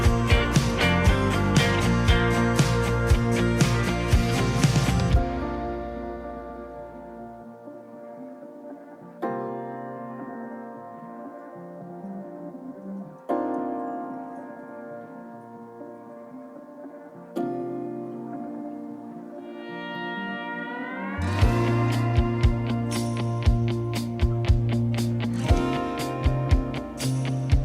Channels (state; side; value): identical; both; correlation 1.00